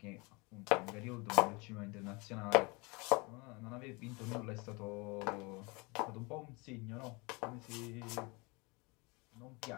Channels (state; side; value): quieter; right; 27.5 dB